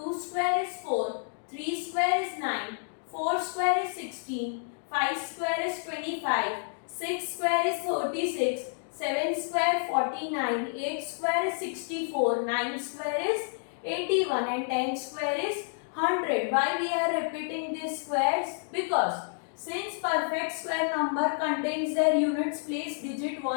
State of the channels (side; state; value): right; silent; digital silence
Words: square is 4, 3 square is 9, 4 square is 16, 5 square is 25, 6 square is 36, 7 square 49, 8 square is 64, 9 square is 81 and 10 square is 100. Why we are repeating these squares? Because since perfect square number contains their units place digit